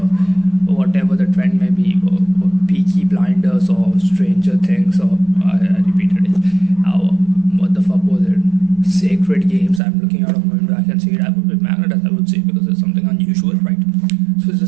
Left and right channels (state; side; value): drops out; left; at 9.8 s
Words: whatever the trend may be, or Peaky Blinders or Stranger Things, or I repeated it. What the fuck was it? Sacred Games. I'm looking out of my window, I can see it. I would be magnetized, I would say, because it's something unusual, right? So it's the